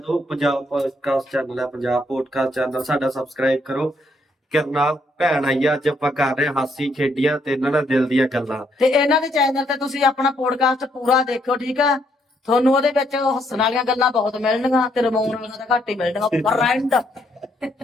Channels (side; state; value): both; normal; correlation 0.72